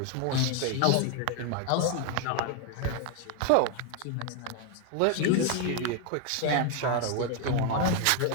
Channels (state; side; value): different; both; correlation 0.00